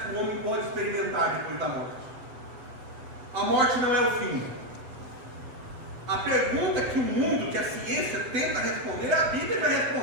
que o homem pode experimentar depois da morte. A morte não é o fim. A pergunta que o mundo, que a ciência tenta responder, a Bíblia já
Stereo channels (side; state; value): left; late; 7.9 ms